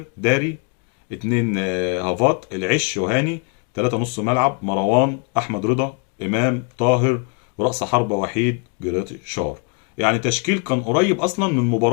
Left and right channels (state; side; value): quieter; right; 34.9 dB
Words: داري، 2 هافات العش وهاني، 3 نص ملعب: مروان، احمد رضا، امام طاهر، ورأس حربة وحيد جريتشار. يعني تشكيل كان قريب اصلا من